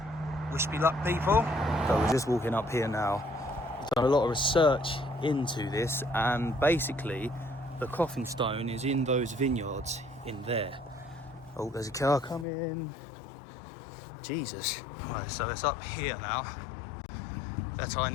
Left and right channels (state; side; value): drops out; right; at 12.5 s